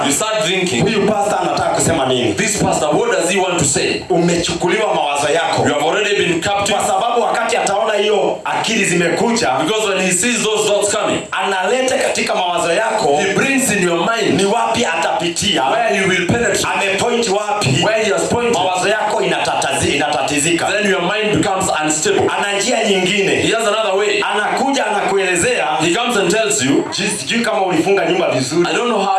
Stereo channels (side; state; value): both; identical; correlation 1.00